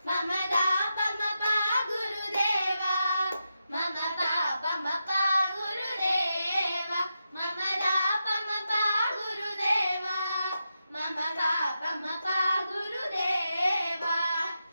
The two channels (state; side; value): inverted; both; correlation -0.87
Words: मम दापमपा गुरुदेवा मम पापमपा गुरुदेवा मम दापमपा गुरुदेवा मम पापमपा गुरुदेवा